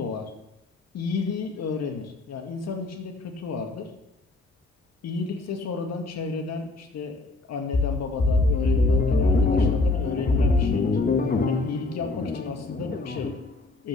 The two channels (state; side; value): quieter; right; 3.2 dB